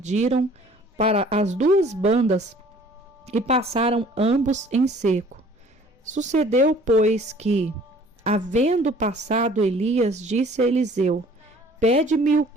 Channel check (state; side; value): normal; both; correlation 0.53